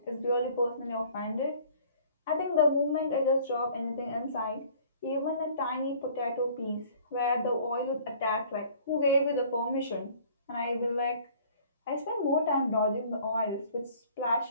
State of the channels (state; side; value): inverted; both; correlation -0.53